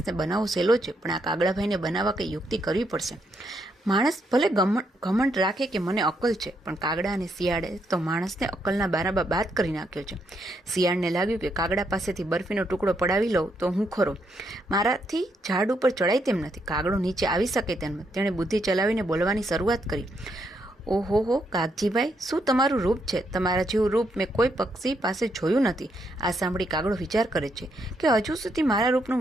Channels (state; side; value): normal; both; correlation 0.77